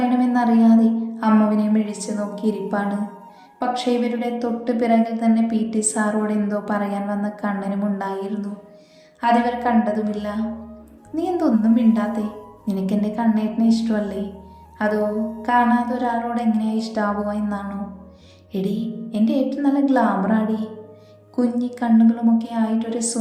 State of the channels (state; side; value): identical; both; correlation 1.00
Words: അമ്മുവിനെ മിഴിച്ചു നോക്കിയിരിപ്പാണ്. പക്ഷേ ഇവരുടെ തൊട്ട് പിറകിൽ തന്നെ PT സാറോട് എന്തോ പറയാൻ വന്ന കണ്ണനും ഉണ്ടായിരുന്നു. അതിവർ കണ്ടതുമില്ല. നീ എന്തൊന്നും മിണ്ടാത്തേ? നിനക്കെൻ്റെ കണ്ണേട്ടനെ ഇഷ്ടമല്ലേ? അതോ കാണാതെ ഒരാളോട് എങ്ങനെയാ ഇഷ്ടാവുക എന്നാണോ? എടി, എൻ്റെ ഏട്ടൻ നല്ല ഗ്ലാമറാടി. കുഞ്ഞി കണ്ണുകളുമൊക്കെ ആയിട്ടൊരു